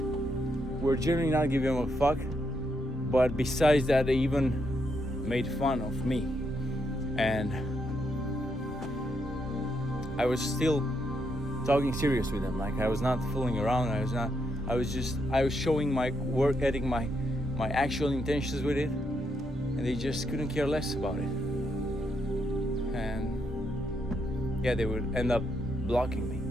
were generally not giving a fuck, but besides that, they even made fun of me. And I was still talking serious with them. Like I was not fooling around. I was showing my work ethic, my actual intentions with it, and they just couldn't care less about it. And yeah, they would end up blocking me.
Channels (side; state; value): both; normal; correlation 0.79